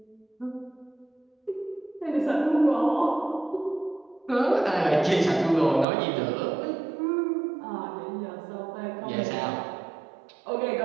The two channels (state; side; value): drops out; left; at 5.9 s